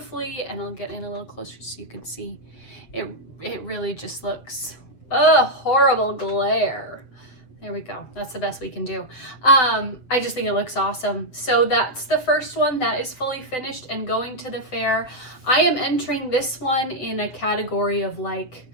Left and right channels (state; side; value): late; right; 7.7 ms